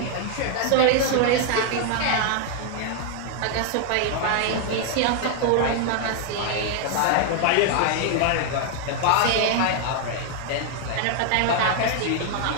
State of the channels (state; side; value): different; both; correlation 0.00